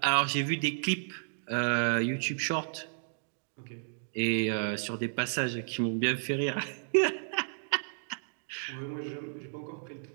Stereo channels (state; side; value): silent; left; digital silence